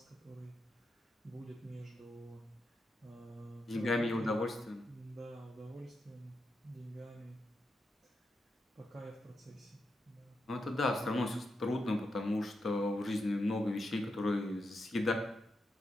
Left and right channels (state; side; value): normal; both; correlation 0.86